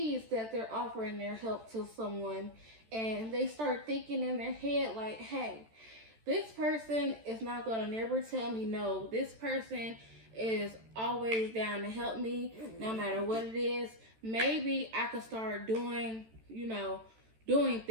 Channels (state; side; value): late; left; 13 ms